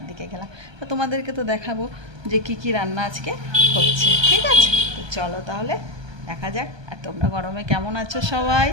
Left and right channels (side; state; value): left; late; 1.2 ms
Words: দিকে গেলাম। তো তোমাদেরকে তো দেখাবো যে কি রান্না আজকে হচ্ছে, ঠিক আছে? তো চলো তাহলে দেখা যাক। আর তোমরা গরমে কেমন আছো? সবাই